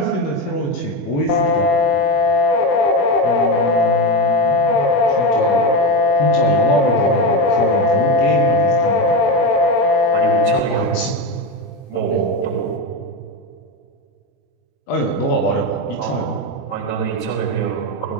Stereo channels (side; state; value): right; late; 22 ms